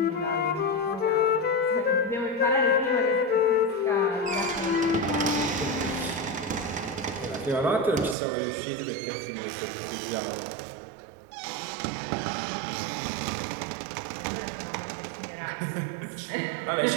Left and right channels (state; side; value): drops out; left; at 8.2 s